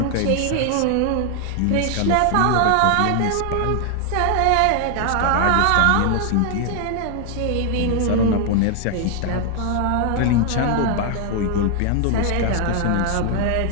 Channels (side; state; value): both; different; correlation 0.00